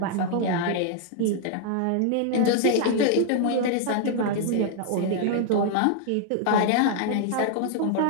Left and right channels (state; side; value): different; both; correlation 0.00